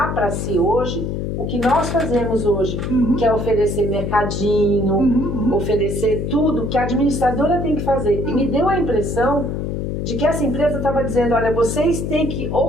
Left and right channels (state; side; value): noise; left; hum, 3 dB below the sound